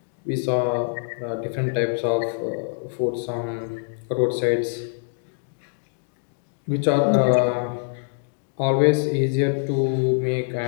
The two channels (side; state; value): right; silent; digital silence